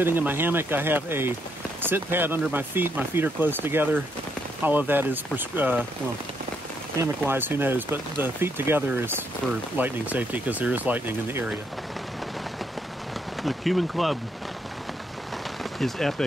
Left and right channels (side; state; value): both; normal; correlation 0.75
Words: in my hammock. I have a sit pad under my feet. My feet are close together. All of that is, well, hammock-wise, who knows, but the feet together is for lightning safety because there is lightning in the area. The Cuban Club is